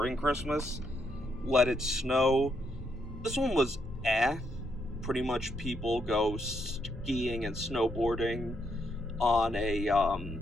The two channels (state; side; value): normal; both; correlation 0.77